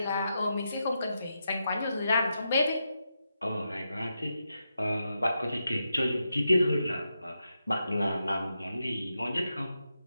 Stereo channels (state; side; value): inverted; both; correlation -0.86